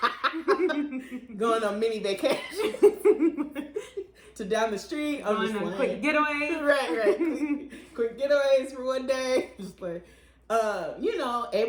Going on mini vacations to down the street. I'm Going just on like, quick getaway. right. Quick getaways for one day. Just like, you know,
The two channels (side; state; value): both; identical; correlation 1.00